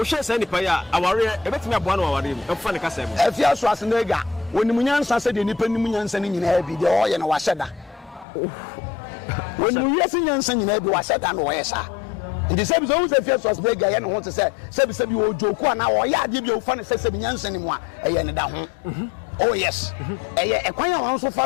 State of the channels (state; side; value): drops out; right; at 8.2 s